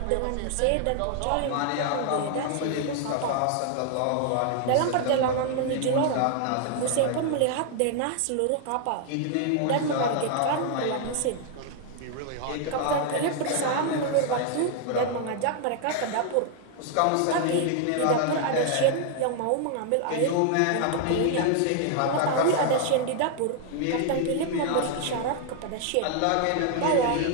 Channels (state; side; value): different; both; correlation 0.00